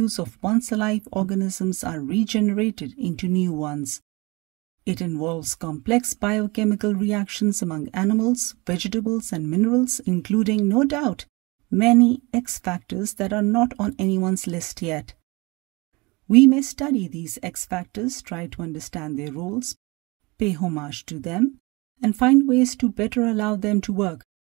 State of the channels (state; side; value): quieter; left; 25.5 dB